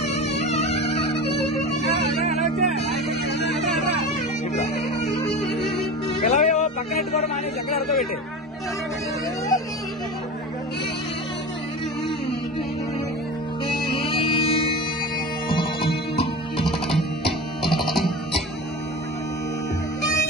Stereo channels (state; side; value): normal; both; correlation 0.31